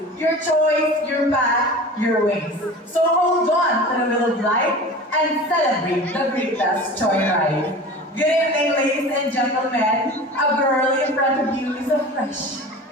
Your choice, your path, your ways. So hold on to the wheel of life and celebrate the greatest joyride. Good evening, ladies and gentlemen. A girl in front of you is a fresh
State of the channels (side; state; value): both; normal; correlation 0.36